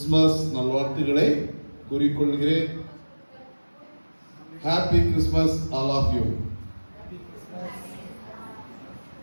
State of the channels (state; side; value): inverted; both; correlation -1.00